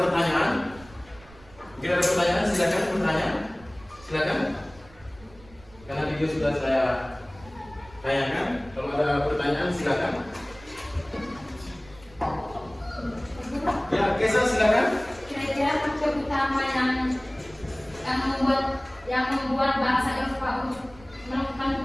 Mungkin ada pertanyaan, silakan bertanya. Silakan. Karena video sudah saya tayangkan. Kalau ada pertanyaan, silakan. Ya, Kesa silakan. Kira-kira faktor utama yang membuat bangsa Eropa untuk melakukan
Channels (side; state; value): right; noise; rumble, 23 dB below the sound